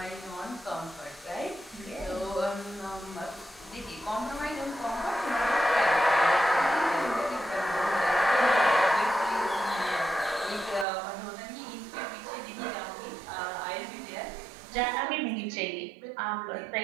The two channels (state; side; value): drops out; left; at 10.9 s